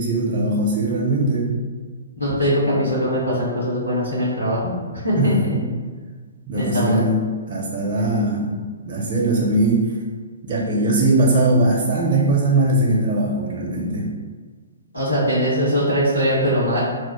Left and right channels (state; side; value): inverted; both; correlation -0.33